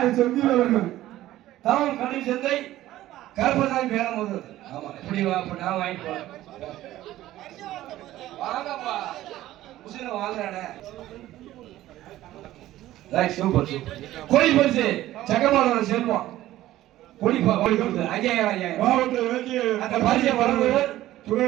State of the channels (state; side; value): quieter; left; 14.8 dB